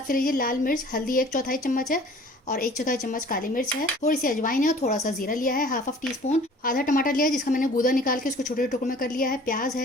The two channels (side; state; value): both; normal; correlation 0.49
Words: से लीजिए। लाल मिर्च, हल्दी 1/4 चम्मच है और 1/4 चम्मच काली मिर्च है। थोड़ी सी अजवाइन है और थोड़ा सा जीरा लिया है, हाफ टी स्पून। आधा टमाटर लिया है जिसका मैंने गूदा निकाल के उसको छोटे टुकड़ों में कर लिया है। प्याज